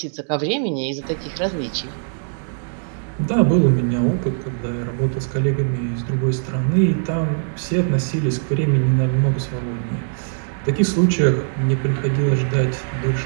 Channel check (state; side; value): silent; left; digital silence